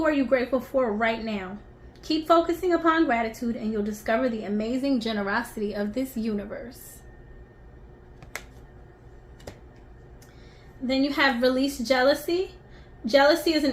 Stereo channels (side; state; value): both; identical; correlation 1.00